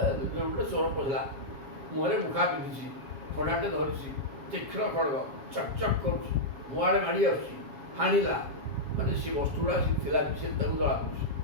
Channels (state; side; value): late; left; 7.3 ms